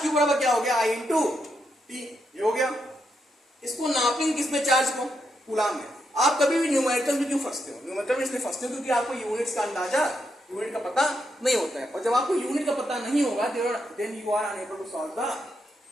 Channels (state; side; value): normal; both; correlation 0.81